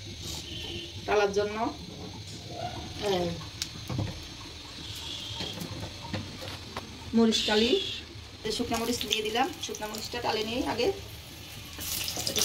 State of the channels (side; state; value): both; identical; correlation 1.00